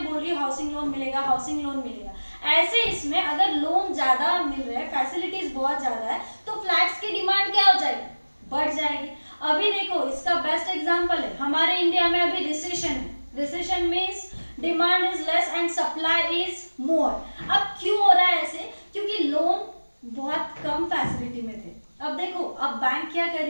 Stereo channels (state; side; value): inverted; both; correlation -1.00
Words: बोल रही है हाउसिंग लोन मिलेगा, हाउसिंग लोन मिलेगा, ऐसे इसमें अगर लोन ज्यादा मिल रहा है, फैसिलिटीज बहुत ज्यादा है, तो फ्लैट्स की डिमांड क्या हो जाएगी? बढ़ जाएगी। अभी देखो इसका बेस्ट एग्जाम्पल है, हमारे इंडिया में अभी रिसेशन है। Recession means demand is less and supply is more. अब क्यों हो रहा है ऐसे? क्योंकि लोन बहुत कम फैसिलिटी में थे। अब देखो अब बैंक क्या कर